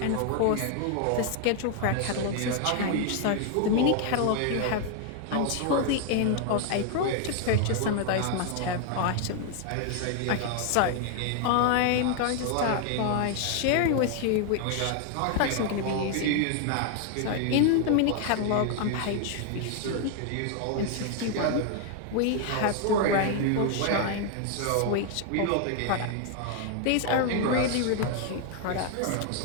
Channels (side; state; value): both; different; correlation 0.00